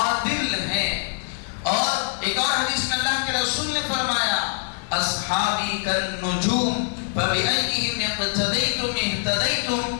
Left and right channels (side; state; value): right; silent; digital silence